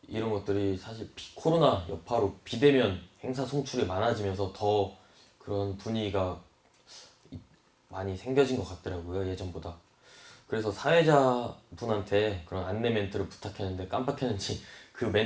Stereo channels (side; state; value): both; identical; correlation 1.00